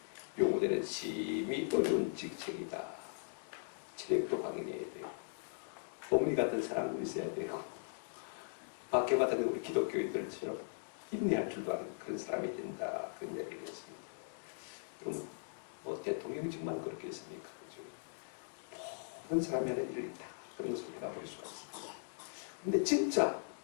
요구되는 심히 어려운 직책이다. 체력도 강인해야 되고 어머니 같은 사랑도 있어야 되고 밖에 봤던 우리 기독교인들처럼 인내할 줄도 아는 그런 사람이 된다. 그런 이야기를 했습니다. 그러면 뭐 대통령이 정말 그렇게 했습니까? 그죠? 모든 사람이 하는 일이 다 그런 것을 우리가 볼 수가 있습니다. 근데 진짜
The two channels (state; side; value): silent; right; digital silence